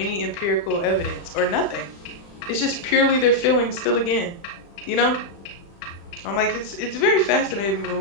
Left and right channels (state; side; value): late; right; 35 ms